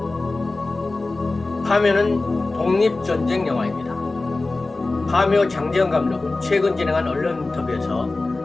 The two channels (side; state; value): right; quieter; 3.3 dB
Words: 파묘는 독립전쟁 영화입니다. 파묘 장재현 감독은 최근 진행한 언론 인터뷰에서